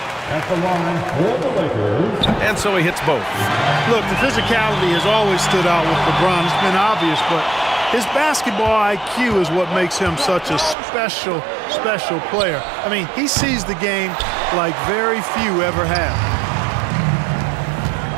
At the line for the Lakers. And so he hits both. Look, the physicality has always stood out with LeBron. It's been obvious, but his basketball IQ is what makes him such a special, special player. I mean, he sees the game like very few ever have.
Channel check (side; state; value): left; drops out; at 10.8 s